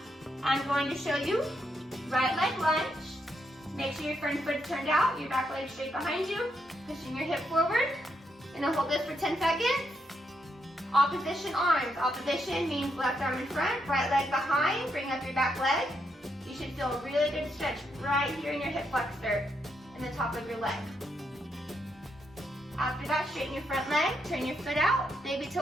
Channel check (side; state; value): both; normal; correlation 0.79